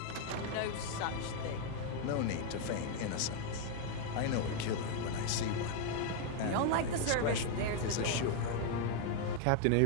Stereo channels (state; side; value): different; both; correlation 0.00